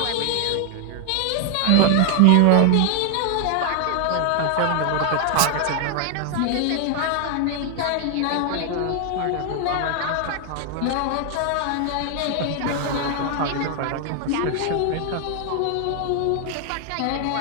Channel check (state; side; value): different; both; correlation 0.00